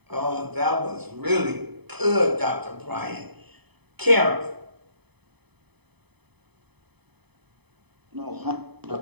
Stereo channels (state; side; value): late; left; 0.98 ms